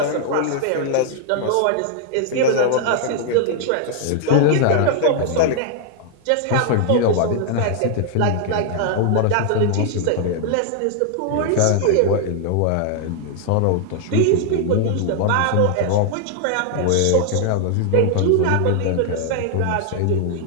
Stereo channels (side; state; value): both; different; correlation 0.00